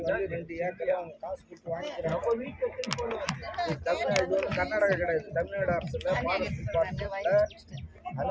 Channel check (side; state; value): both; identical; correlation 1.00